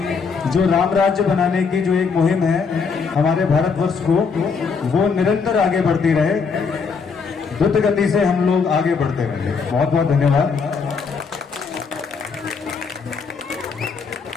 जो राम राज्य बनाने की जो एक मुहिम है हमारे भारतवर्ष को, वो निरंतर आगे बढ़ती रहे, द्रुत गति से हम लोग आगे बढ़ते रहेंगे। बहुत बहुत धन्यवाद।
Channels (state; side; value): quieter; right; 5.4 dB